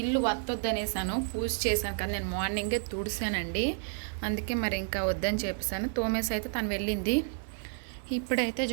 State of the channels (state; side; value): silent; left; 57 dB below the other